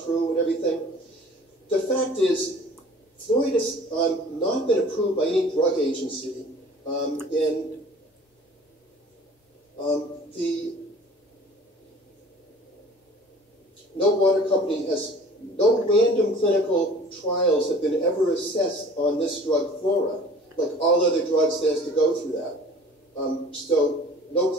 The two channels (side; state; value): both; normal; correlation 0.47